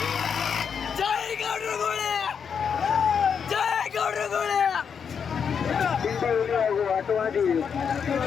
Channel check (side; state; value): right; quieter; 6.9 dB